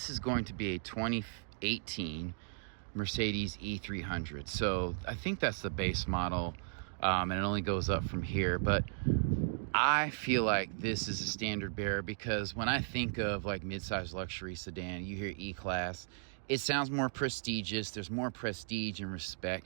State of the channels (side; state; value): left; silent; digital silence